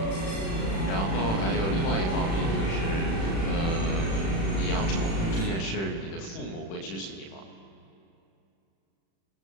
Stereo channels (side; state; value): right; late; 36 ms